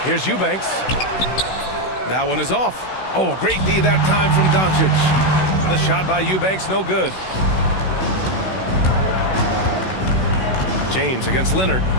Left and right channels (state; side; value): late; right; 16 ms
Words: Here's Eubanks. That one is off. Oh, great D that time from Doncic. The shot by Eubanks, no good. James against Leonard.